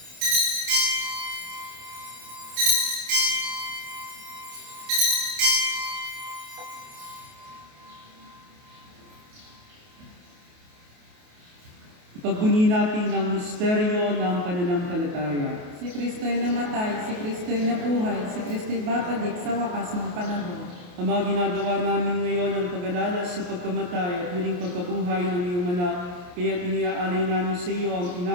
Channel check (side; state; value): left; late; 28 ms